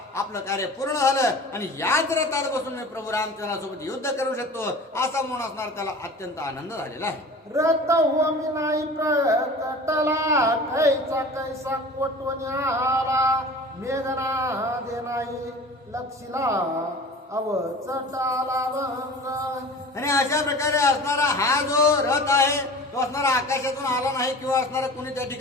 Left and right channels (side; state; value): both; normal; correlation 0.39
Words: आपलं कार्य पूर्ण झालं आणि याच रथात बसून मी प्रभू रामचंद्रासोबत युद्ध करू शकतो असा म्हणून असणार त्याला अत्यंत आनंद झालेला आहे. रथ होमी नाही प्रकटला कैसा कैसा कोटवण्याला मेघना दे नाही लक्षिला अवचटाला भंग. आणि अशा प्रकारे असणारा हा जो रथ आहे तो असणारा आकाशातून आला नाही किंवा असणारा कोणी त्या